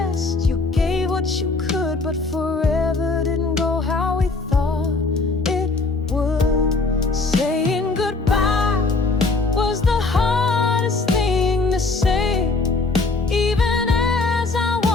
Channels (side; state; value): right; quieter; 3.7 dB